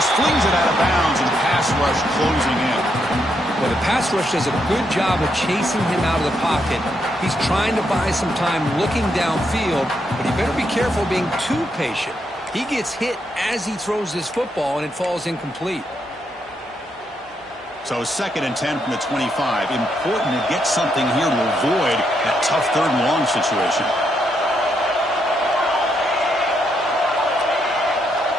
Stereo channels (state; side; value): normal; both; correlation 0.78